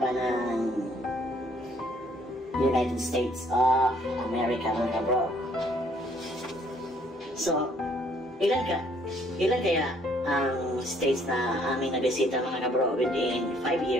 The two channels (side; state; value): both; normal; correlation 0.63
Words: ng United States of America mga kabro. So, ilan kaya ang states na aming nabisita mga kabro within 5